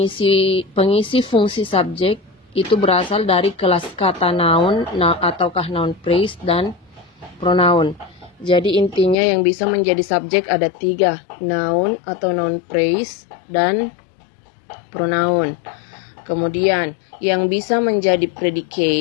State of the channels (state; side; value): drops out; right; at 9.2 s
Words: fungsi subjek itu berasal dari kelas kata noun ataukah noun phrase dan pronoun. Jadi intinya yang bisa menjadi subjek ada 3, noun atau noun phrase dan pronoun. Kemudian yang bisa menjadi